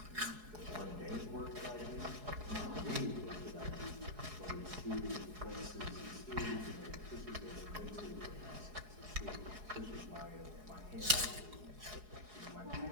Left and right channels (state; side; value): late; left; 4.8 ms